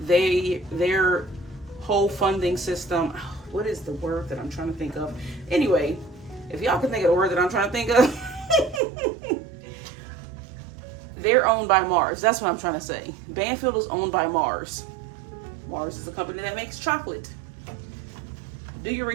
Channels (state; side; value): drops out; left; at 8.8 s